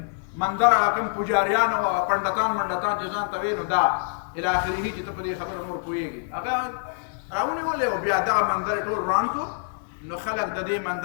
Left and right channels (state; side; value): silent; right; 61 dB below the other